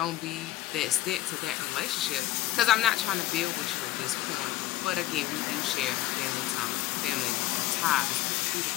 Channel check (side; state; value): right; quieter; 15.6 dB